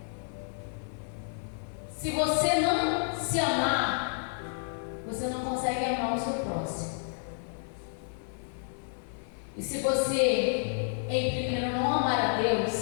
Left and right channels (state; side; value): silent; right; 55 dB below the other